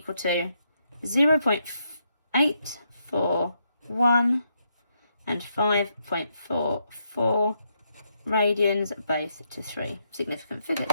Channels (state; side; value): inverted; both; correlation -0.78